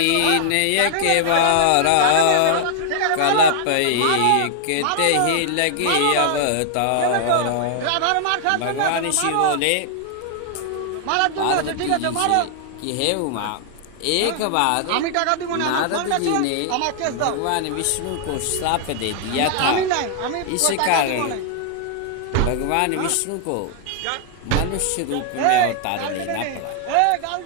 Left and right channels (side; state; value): both; different; correlation 0.00